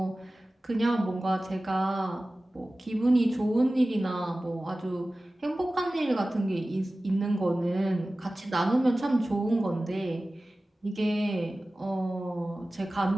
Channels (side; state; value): both; normal; correlation 0.97